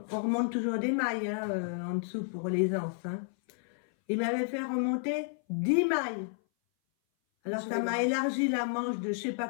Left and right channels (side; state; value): right; silent; 57 dB below the other